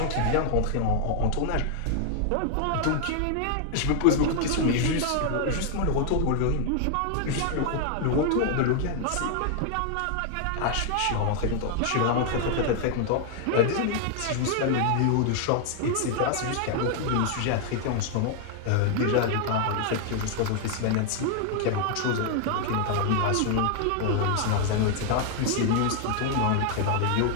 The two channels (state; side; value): different; both; correlation 0.00